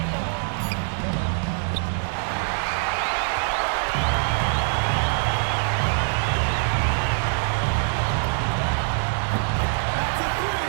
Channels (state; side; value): silent; left; 58 dB below the other